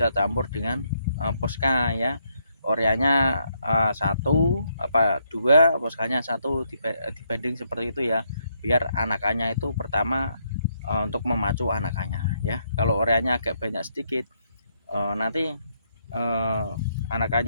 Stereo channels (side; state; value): both; inverted; correlation -0.75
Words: campur dengan poska ya. Ureanya 1 apa 2, poskanya 1 dibanding seperti itu ya, biar anakannya itu pertama untuk memacu anakannya ya. Kalau ureanya agak banyak sedikit nanti